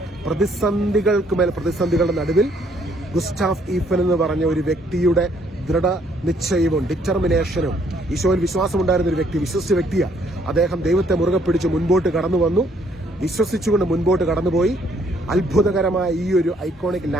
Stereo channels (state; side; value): normal; both; correlation 0.66